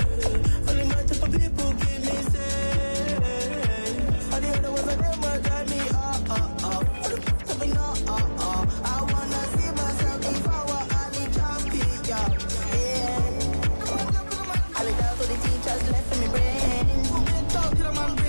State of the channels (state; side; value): inverted; both; correlation -1.00